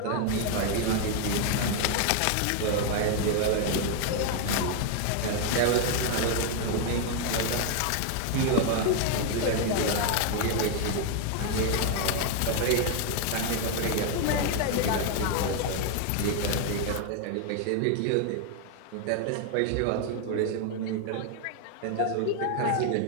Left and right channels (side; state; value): both; different; correlation 0.00